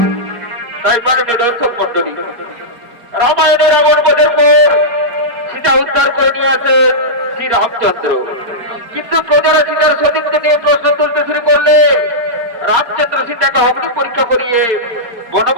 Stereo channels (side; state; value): left; late; 4.6 ms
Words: তাই মাননীয় দর্শক মন্ডলী, রামায়ণের রাবণবধের পর সীতা উদ্ধার করে নিয়ে আসেন শ্রী রামচন্দ্র। কিন্তু প্রজারা সীতার সতীত্ব নিয়ে প্রশ্ন তুলতে শুরু করলে রামচন্দ্র সীতাকে অগ্নি পরীক্ষা করিয়ে